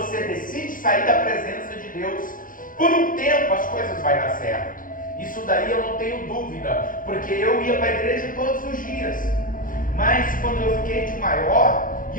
decide sair da presença de Deus, por um tempo as coisas vão dar certo. Isso daí eu não tenho dúvida, porque eu ia para a igreja todos os dias. Mas quando eu fiquei de maior, e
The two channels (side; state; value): right; late; 0.40 ms